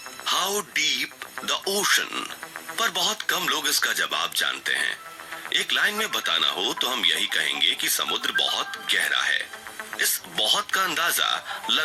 How deep the ocean? पर बहुत कम लोग इसका जवाब जानते हैं। एक लाइन में बताना हो तो हम यही कहेंगे कि समुद्र बहुत गहरा है। इस बहुत का अंदाजा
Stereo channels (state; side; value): identical; both; correlation 1.00